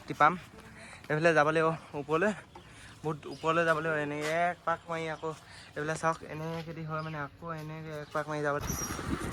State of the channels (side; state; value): both; identical; correlation 1.00